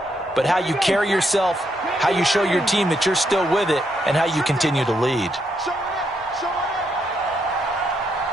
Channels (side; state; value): both; normal; correlation 0.77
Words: but how you carry yourself, how you show your team that you're still with it, and how you continue to lead.